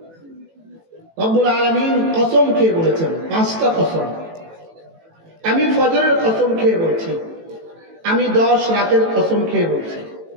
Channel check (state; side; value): late; left; 18 ms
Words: রব্বুল আলামিন কসম খেয়ে বলেছেন, 5টা কসম। আমি ফজরের কসম খেয়ে বলছি, আমি 10 রাতের কসম খেয়ে বলছি,